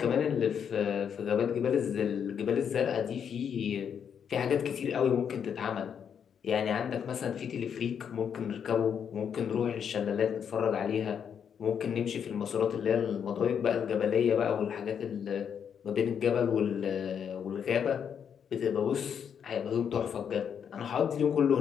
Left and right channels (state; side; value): quieter; right; 7.8 dB